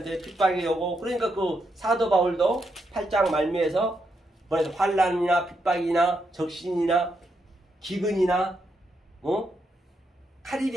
핍박이 오고. 그러니까 그 사도 바울도 8장 말미에서 뭐래서 환난이나 핍박이나 적신이나 기근이나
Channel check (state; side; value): normal; both; correlation 0.81